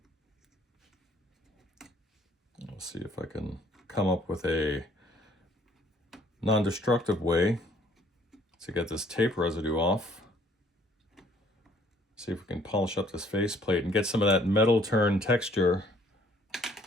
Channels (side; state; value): both; normal; correlation 0.61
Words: Let's see if I can come up with a non-destructive way to get this tape residue off. See if we can polish up this faceplate and get some of that metal turn texture